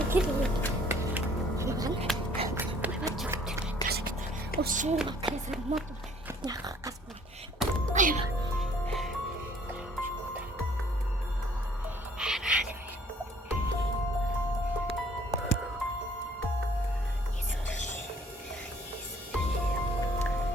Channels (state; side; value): normal; both; correlation 0.58